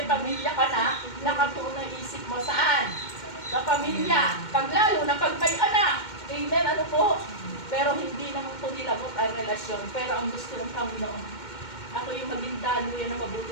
pamilya ka na, nakatuon ang isip mo saan? Sa pamilya. Pag lalo na pag may anak. Amen. Ano po? Pero hindi naman po nilabot ang relasyon. Pero ang gusto ng Panginoon, ako yung maging daluyan ng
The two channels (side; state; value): right; late; 2.1 ms